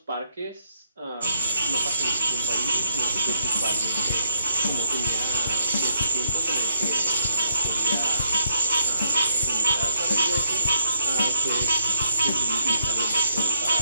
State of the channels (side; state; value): both; inverted; correlation -0.69